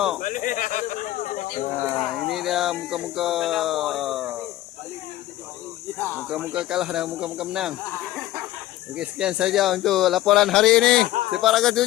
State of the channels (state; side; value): quieter; right; 15.2 dB